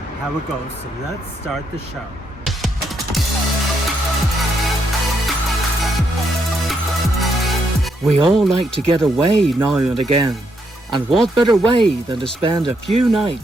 it goes. So let's start the show. We all like to get away now and again. And what better way than to spend a few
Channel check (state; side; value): normal; both; correlation 0.77